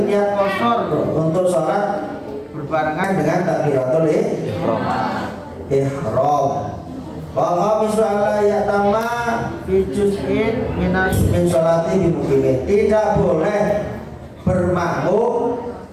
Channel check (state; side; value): identical; both; correlation 1.00